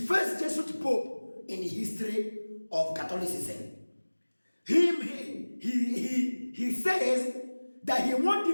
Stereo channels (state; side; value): inverted; both; correlation -1.00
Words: Jesuit Pope in the history of Catholicism? He says that he wants